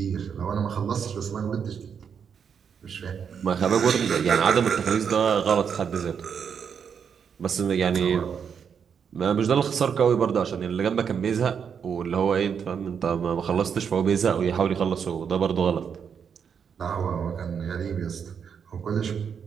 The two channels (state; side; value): quieter; left; 7.1 dB